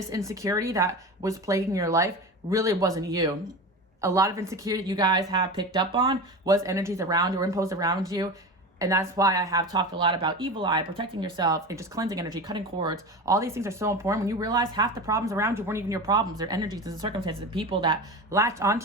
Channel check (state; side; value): normal; both; correlation 0.28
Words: insecurity that was plaguing your life really wasn't you. A lot of insecurity you guys have picked up on was energies around you or imposed around you. And that's why I have talked a lot about evil eye, protecting yourself, and just cleansing energy, cutting cords. All these things are so important. When you realize half the problems around you weren't even your problems, they're energies and circumstances and people that latched